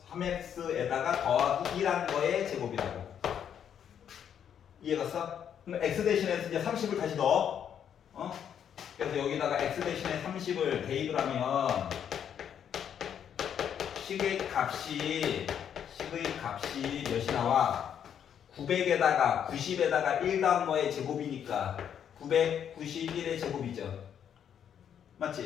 3x에다가 더하기 1한 거의 제곱이라고. 이해갔어? 그럼 x 대신에 이제 30을 다시 넣어. 그래서 여기다가 x 대신에 30을 대입을 하면 식의 값이 몇이 나와? 900에다가 90에다가 1 더한 거의 제곱이니까 991의 제곱이죠.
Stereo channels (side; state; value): right; quieter; 8.8 dB